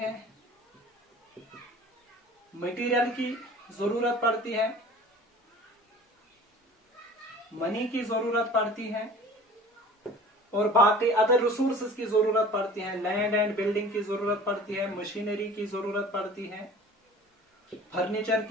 मटेरियल की जरूरत पड़ती है, मनी की जरूरत पड़ती है, और बाकी अदर रिसोर्सेज की जरूरत पड़ती है। लैंड एंड बिल्डिंग की जरूरत पड़ती है, मशीनरी की जरूरत पड़ती है, फर्नीचर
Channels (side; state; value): both; normal; correlation 0.44